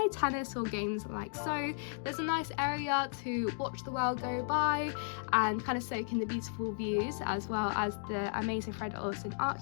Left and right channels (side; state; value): right; silent; digital silence